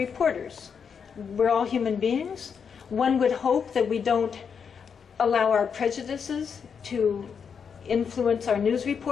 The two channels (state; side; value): quieter; right; 6.6 dB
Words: We're all human beings. One would hope that we don't allow our prejudices to influence our news